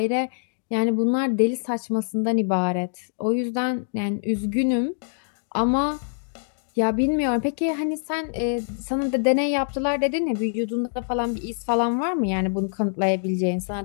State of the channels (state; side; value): silent; right; digital silence